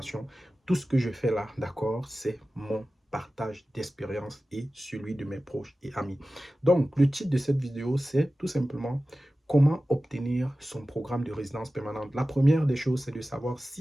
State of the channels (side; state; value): both; normal; correlation 0.95